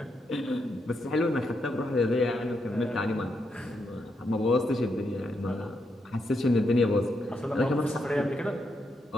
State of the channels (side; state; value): both; normal; correlation 0.81